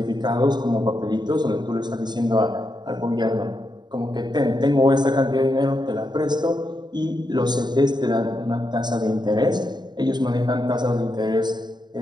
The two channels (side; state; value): left; late; 0.21 ms